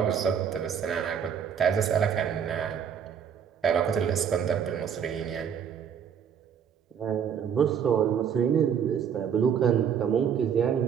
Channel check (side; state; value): left; quieter; 7.9 dB